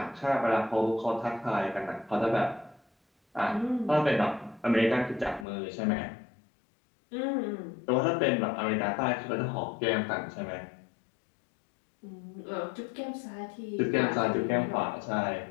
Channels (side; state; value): right; drops out; at 5.5 s